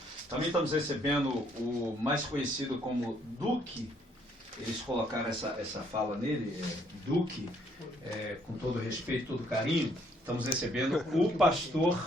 Também estamos recebendo o mais conhecido como Duque. Eles colocaram essa fala nele, Duque, com todo respeito, todo carinho. Estamos recebendo o pastor,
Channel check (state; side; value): normal; both; correlation 0.67